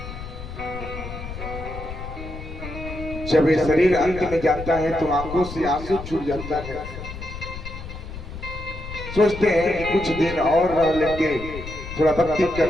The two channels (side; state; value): left; noise; rumble, 10 dB below the sound